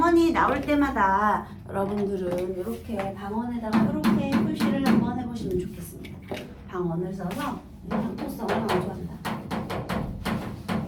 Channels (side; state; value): both; identical; correlation 1.00